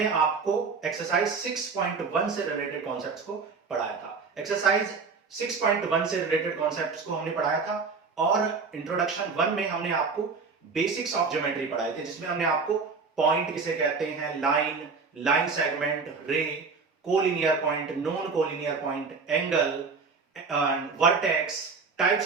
आपको एक्सरसाइज 6.1 से रिलेटेड कॉन्सेप्ट्स को पढ़ाया था। एक्सरसाइज 6.1 से रिलेटेड कॉन्सेप्ट्स को हमने पढ़ाया था और इंट्रोडक्शन 1 में हमने आपको बेसिक्स ऑफ ज्योमेट्री पढ़ाए थे, जिसमें हमने आपको पॉइंट किसे कहते हैं, line, line segment, ray, collinear point, non collinear point, angle, vertex, types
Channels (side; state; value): left; quieter; 4.8 dB